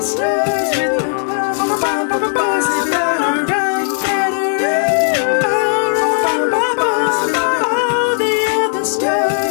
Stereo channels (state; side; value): silent; right; 67 dB below the other